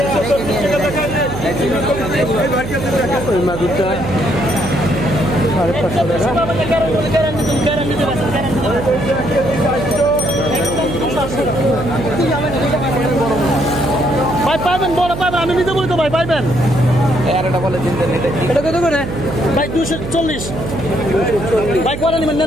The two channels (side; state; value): right; noise; hum, 7 dB below the sound